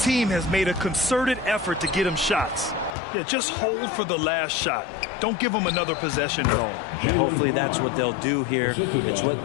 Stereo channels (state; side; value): drops out; right; at 3.0 s